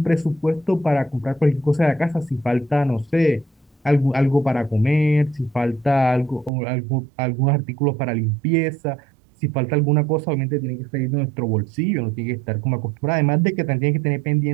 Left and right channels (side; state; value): left; drops out; at 6.5 s